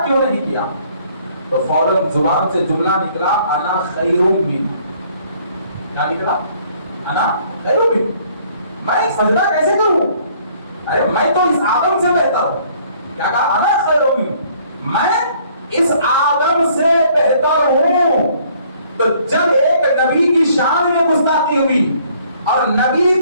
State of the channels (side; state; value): both; inverted; correlation -0.61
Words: کیوں نہیں کیا؟ تو فوراً زبان سے جملہ نکلا, انا خیر من. کیا نکلا؟ انا خیر من. میں سجدہ کیسے کروں؟ ارے میں تو اس آدم سے بہتر ہوں. کیا کہا؟ انا خیر من, میں اس آدم سے بہتر ہوں. تو جب ایک نبی کی شان میں گستاخی ہوئی اور نبی